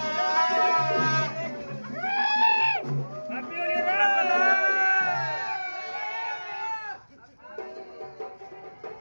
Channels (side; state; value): both; inverted; correlation -1.00